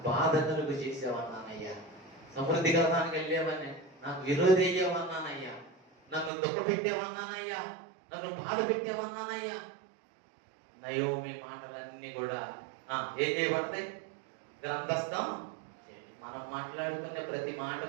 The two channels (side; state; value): left; drops out; at 6.3 s